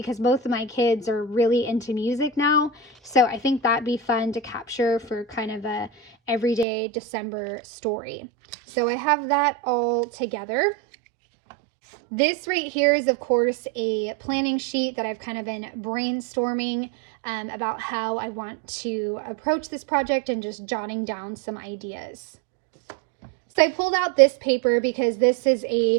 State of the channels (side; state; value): left; drops out; at 6.7 s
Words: both of my kids are really into music now. So I think that'd be fun to capture for kind of a everyday December story. So I have that all together. This right here is, of course, a planning sheet that I've kind of been brainstorming about how I want to approach this project and just jotting down some ideas. So I pulled out this paper because this is